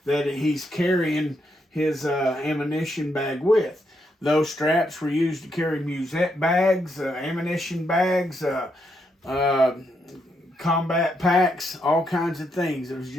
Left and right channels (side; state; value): both; normal; correlation 0.79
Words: he's carrying his ammunition bag with. Those straps were used to carry musette bags, ammunition bags, combat packs, all kinds of things. It was